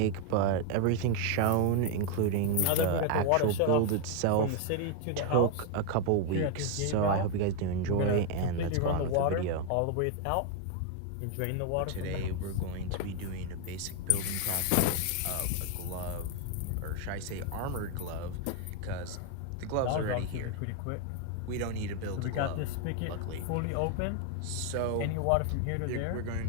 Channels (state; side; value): different; both; correlation 0.00